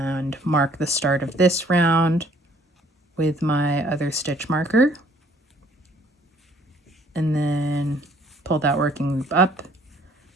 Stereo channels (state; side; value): normal; both; correlation 0.60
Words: mark the start of this round with my other stitch marker. And then pull that working loop up.